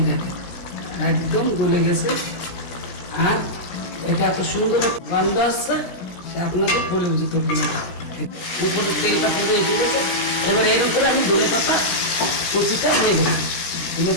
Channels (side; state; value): right; late; 16 ms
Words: দেখেন একদম গলে গেছে, আর এটা এত সুন্দর গন্ধ আসছে আপনাদের বলে বুঝতে পারবেন না। উপরে তেলটা পুরো এসে গেছে। এবার এর উপরে আমি ধনেপাতা কুচিটা হয়ে গেছে,